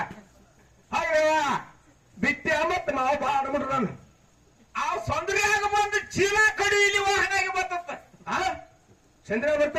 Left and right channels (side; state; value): both; identical; correlation 1.00